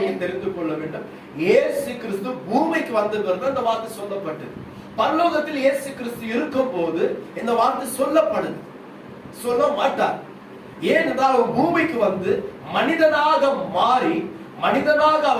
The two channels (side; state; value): both; identical; correlation 1.00